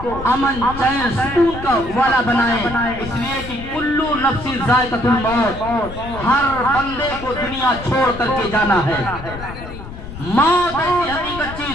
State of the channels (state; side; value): noise; left; rumble, 12 dB below the sound